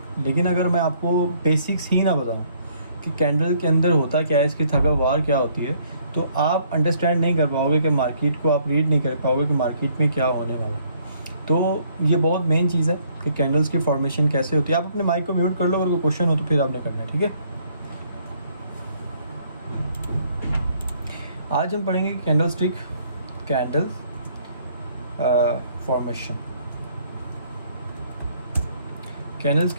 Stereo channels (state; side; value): inverted; both; correlation -0.65